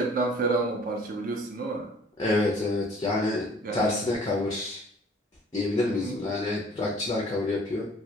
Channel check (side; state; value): both; normal; correlation 0.53